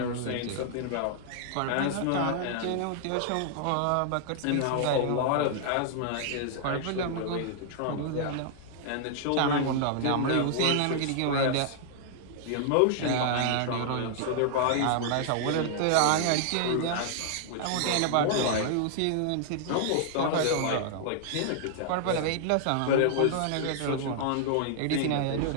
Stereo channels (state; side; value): different; both; correlation -0.01